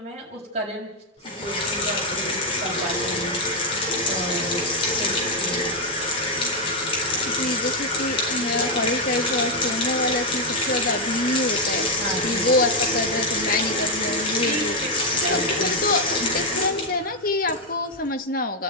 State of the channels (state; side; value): normal; both; correlation 0.02